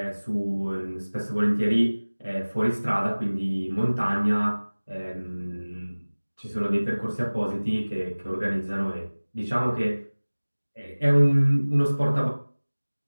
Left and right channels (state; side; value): inverted; both; correlation -1.00